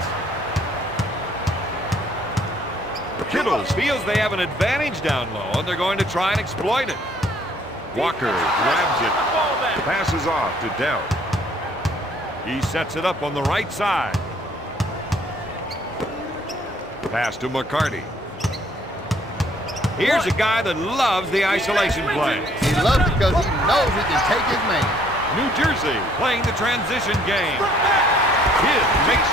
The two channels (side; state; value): both; normal; correlation 0.62